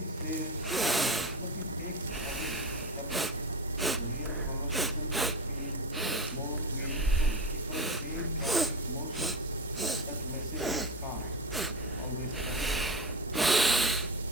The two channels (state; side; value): normal; both; correlation 0.24